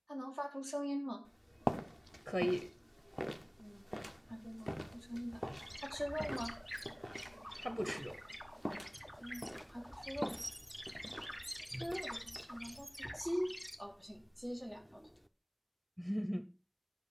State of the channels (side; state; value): both; identical; correlation 1.00